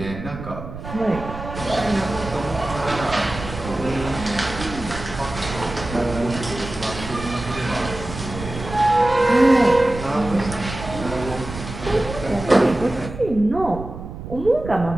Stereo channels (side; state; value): right; noise; rumble, 10 dB below the sound